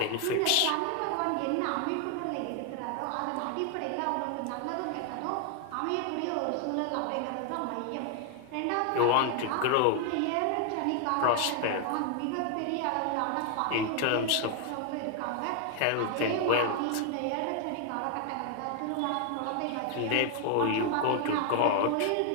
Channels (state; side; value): different; both; correlation 0.00